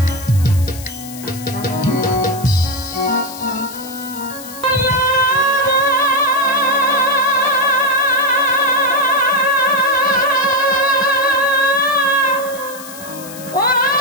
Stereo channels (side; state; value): left; noise; hiss, 15 dB below the sound